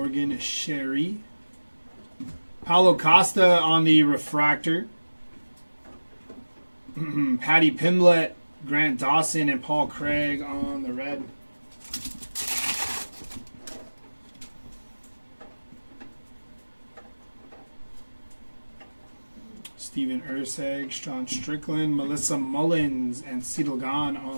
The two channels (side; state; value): both; inverted; correlation -1.00